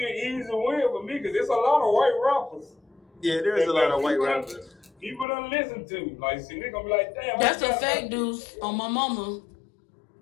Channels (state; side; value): drops out; right; at 5.2 s